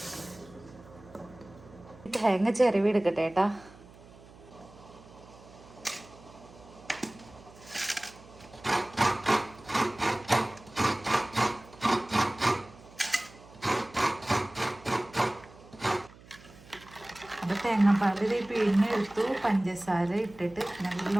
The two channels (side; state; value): right; noise; hum, 22 dB below the sound